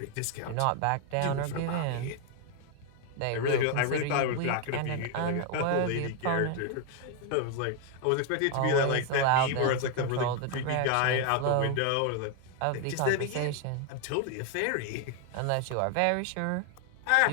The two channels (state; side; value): different; both; correlation 0.01